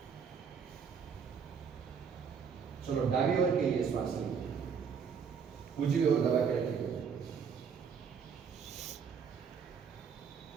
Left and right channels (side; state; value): left; quieter; 6.5 dB